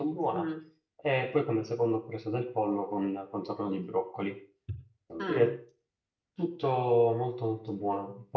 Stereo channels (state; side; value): identical; both; correlation 1.00